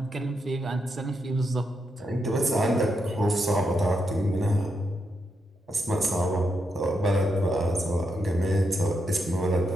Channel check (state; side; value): normal; both; correlation 0.82